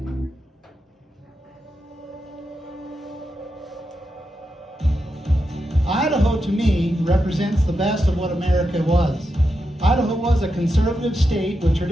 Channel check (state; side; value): normal; both; correlation 0.87